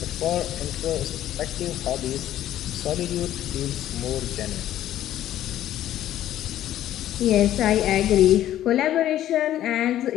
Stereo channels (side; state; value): right; quieter; 12.5 dB